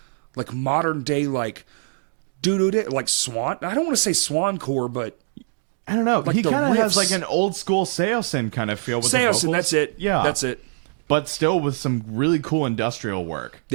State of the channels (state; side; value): silent; left; digital silence